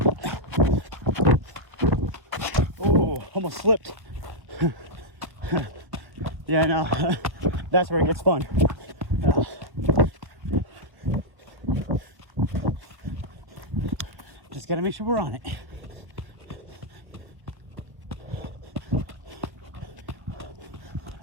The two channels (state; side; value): late; left; 1.0 ms